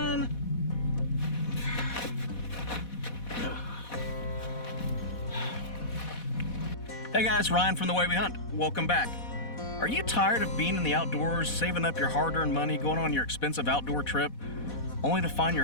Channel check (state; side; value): late; right; 4.1 ms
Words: Hey guys, Ryan from The Way We Hunt. Welcome back. Are you tired of being in the outdoors, saving up your hard-earned money, going on your expensive outdoor trip, only to find